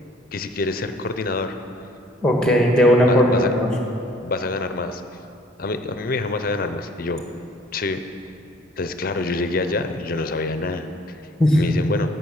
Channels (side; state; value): both; normal; correlation 0.57